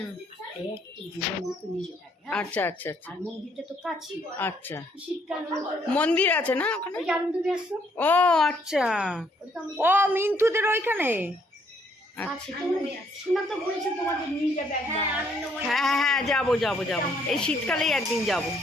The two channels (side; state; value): both; normal; correlation 0.68